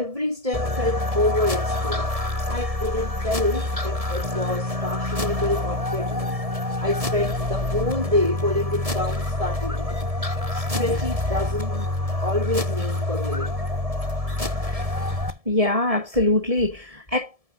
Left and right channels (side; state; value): left; late; 1.7 ms